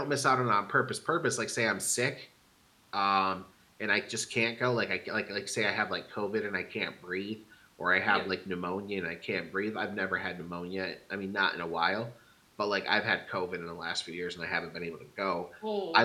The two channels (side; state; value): both; identical; correlation 1.00